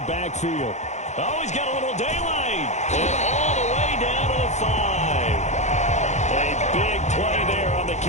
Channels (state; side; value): late; right; 0.33 ms